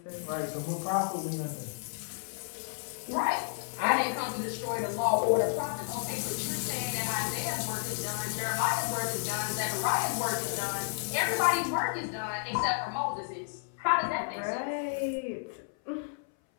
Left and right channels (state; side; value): silent; right; 57 dB below the other